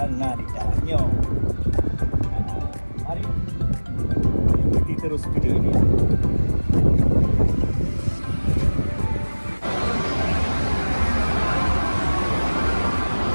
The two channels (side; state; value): both; inverted; correlation -1.00